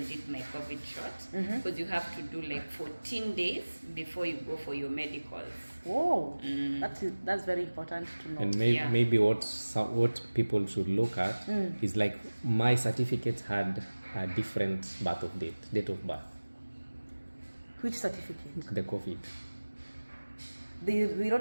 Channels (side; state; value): both; inverted; correlation -1.00